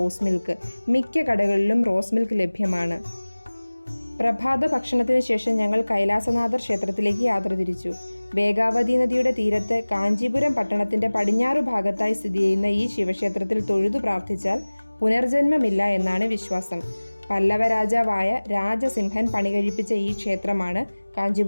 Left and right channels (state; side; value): inverted; both; correlation -1.00